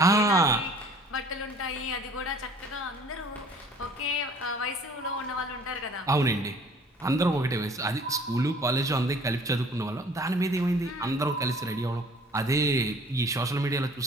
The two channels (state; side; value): normal; both; correlation 0.52